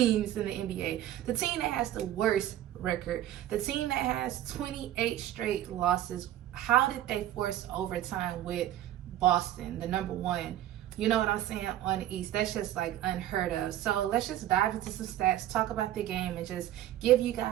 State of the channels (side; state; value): left; quieter; 12.9 dB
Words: in the NBA, the team that has the worst record, the team that has 28 straight losses, how did they force overtime with Boston, the number one? You know what I'm saying, on the East? That's just like unheard of. So let's just dive into some stats, talk about the game, and just give you